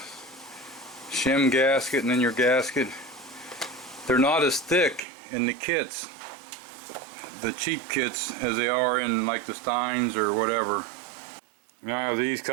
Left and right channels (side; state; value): left; drops out; at 5.0 s